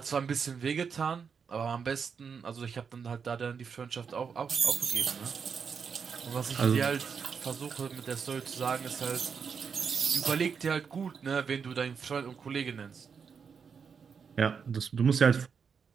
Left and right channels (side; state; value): left; quieter; 6.2 dB